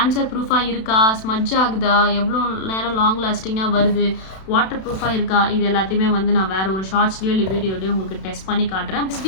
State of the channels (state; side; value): late; right; 32 ms